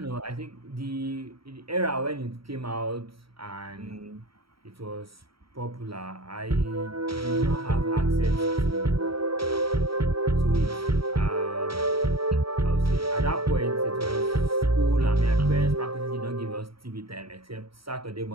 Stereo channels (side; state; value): left; late; 0.75 ms